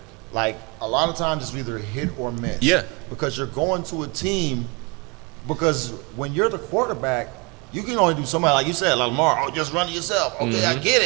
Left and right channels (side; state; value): left; quieter; 29.2 dB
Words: like a lot of times it's either hit or miss. Yeah. Because you're going to a team. Because when you're the quarterback, you can only do somebody like you said, like Lamar. Oh, just run it yourself. Okay, I get